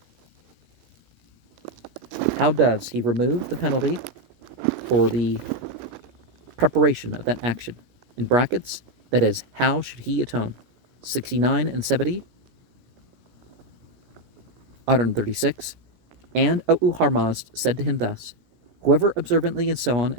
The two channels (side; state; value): left; late; 17 ms